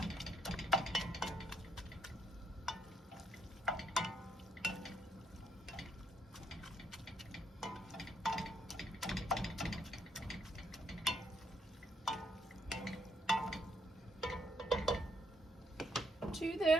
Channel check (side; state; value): both; normal; correlation 0.72